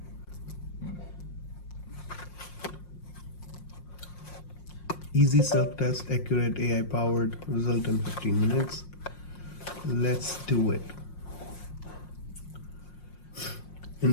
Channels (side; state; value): right; late; 5.6 ms